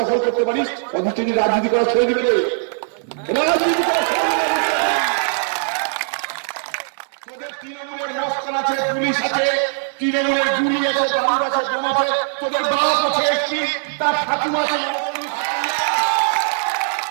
করতে পারিস, অধিষ্ঠিত রাজনীতি করা ছেড়ে দিবে। রাজনীতি করা তোদের তৃণমূলের মস্তান আছে, পুলিশ আছে, তৃণমূলের গুলি আছে, বালুর আছে, বোম আছে, তোদের বাপ আছে, একটি তার ঠাকুমা আছে।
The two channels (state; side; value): silent; left; digital silence